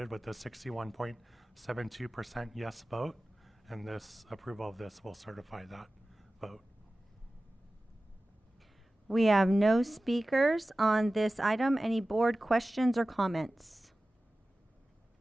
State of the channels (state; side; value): normal; both; correlation 0.96